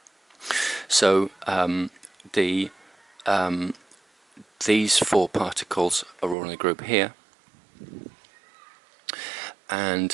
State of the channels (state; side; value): drops out; left; at 6.4 s